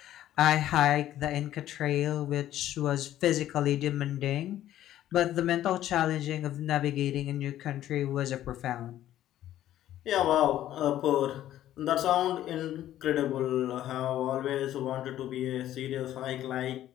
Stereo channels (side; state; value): right; quieter; 12.7 dB